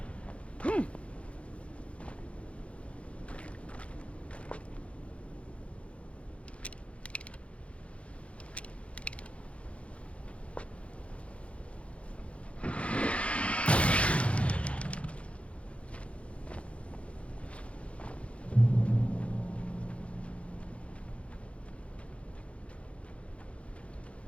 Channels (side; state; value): right; late; 0.062 ms